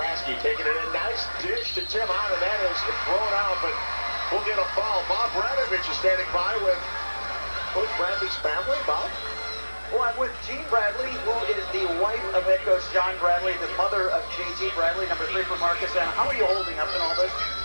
taking it in. Nice dish to Tim Hahn, and that is thrown out, but we'll get a foul. Bob Radovich is standing by with Coach Bradley's family. Bob? Well, I'm with Jean Bradley, who is the wife of head coach John Bradley, the mother of J.G. Bradley, number 3 for Markesan. How are you holding up in all this?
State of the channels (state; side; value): inverted; both; correlation -1.00